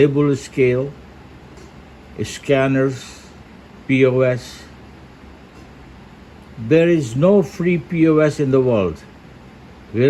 scale, scanners, POS. There is no free POS in the world.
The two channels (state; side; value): identical; both; correlation 1.00